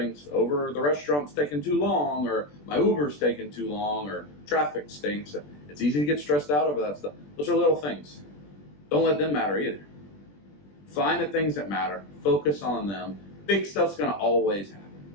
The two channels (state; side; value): late; right; 20 ms